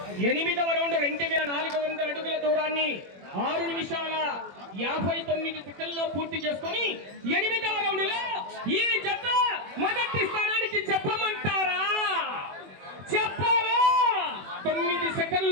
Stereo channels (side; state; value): left; late; 21 ms